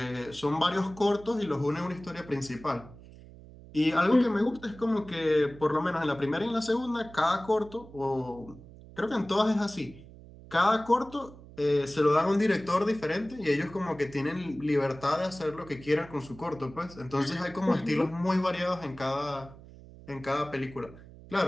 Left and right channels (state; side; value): noise; right; hum, 19 dB below the sound